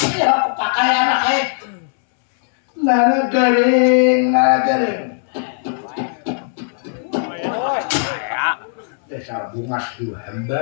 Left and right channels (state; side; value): silent; right; 65 dB below the other